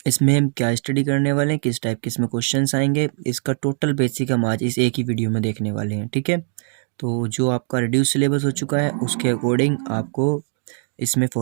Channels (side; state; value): left; silent; 60 dB below the other